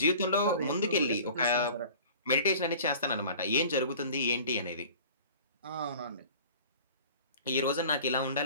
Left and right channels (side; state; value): both; inverted; correlation -0.44